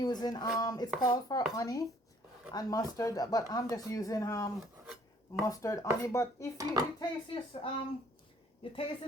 it's called for honey and mustard, but I'm just using mustard honey. But if you taste this you taste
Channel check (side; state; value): both; normal; correlation 0.60